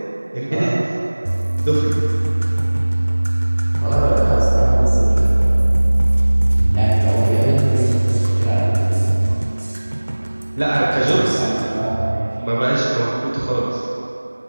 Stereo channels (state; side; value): inverted; both; correlation -1.00